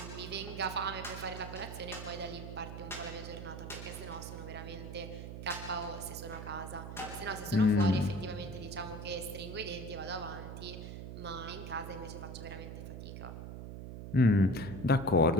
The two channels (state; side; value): noise; right; hum, 8 dB below the sound